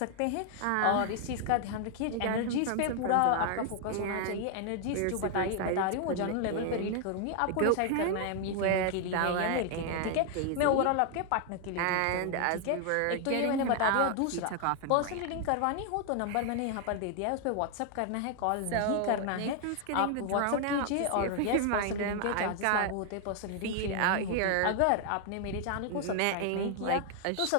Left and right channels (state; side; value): different; both; correlation 0.00